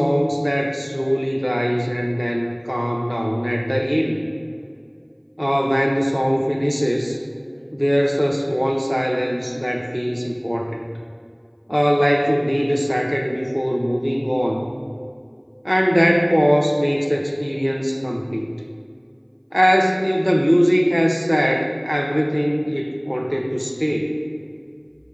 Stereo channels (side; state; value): both; identical; correlation 1.00